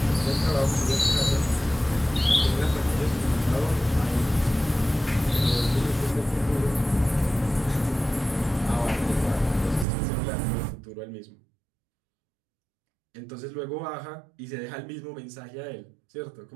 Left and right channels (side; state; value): left; drops out; at 9.9 s